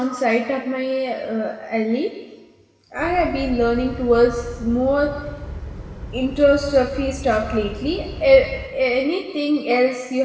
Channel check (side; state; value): both; identical; correlation 1.00